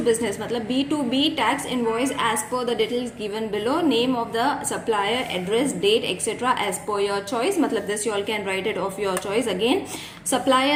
business, matlab B2B tax invoice as per the details given below. Name of the supplier, address, date, etc. as per your choice. Matlab this you all can write it of your choice. Again,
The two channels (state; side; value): identical; both; correlation 1.00